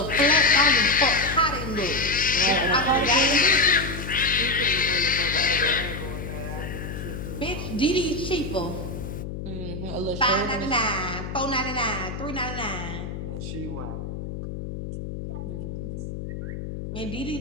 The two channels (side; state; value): left; noise; hum, 7 dB below the sound